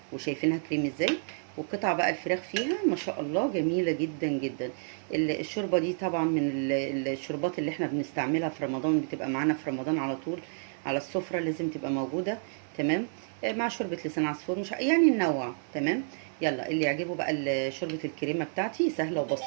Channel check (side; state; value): left; silent; 58 dB below the other